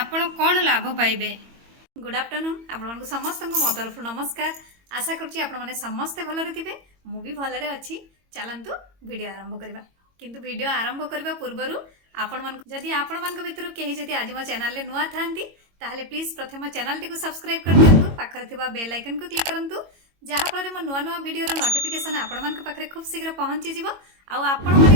कौन लाभ पाइबे। गुड आफ्टरनून आपण समस्त मो तरफ नमस्कार। आशा करुँची आपण मैंने समस्ते भलरे थे मु भी भलरे अच्छी। चलतु वीडियो आरंभ करवा किंतु वीडियो आरंभ करने पूर्वर जदि आपण मान भितर कहीं जदि आज मो चैनल नुआ था ताहले प्लीज प्रथम चैनल टी सब्सक्राइब कर दिंतु, पाखरे थिबा बेल आइकन को क्लिक करंतु जहाँफल मो नुआ नुआ वीडियो नोटिफिकेशन आपण मान पाखरे खूब शीघ्र पहुँची जीवो आउ आपण माने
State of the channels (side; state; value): left; late; 22 ms